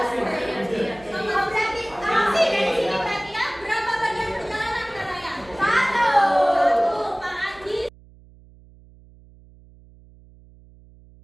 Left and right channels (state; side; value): noise; right; hum, 24 dB below the sound